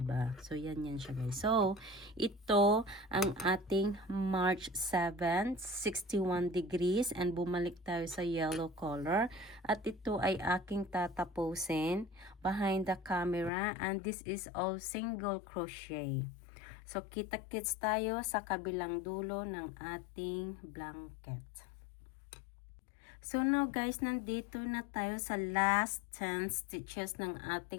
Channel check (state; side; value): drops out; right; at 13.5 s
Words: So yan siya guys. So ito ang ating March 7, 61 degrees and bumalik tayo sa yellow color at ito ay aking tatapusin behind the camera and this is all single crochet. So kita-kits tayo sa kabilang dulo ng ating blanket. So now guys, nandito na tayo sa last 10 stitches ng